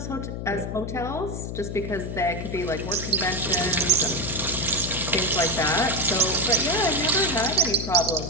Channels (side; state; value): left; noise; hum, 6 dB below the sound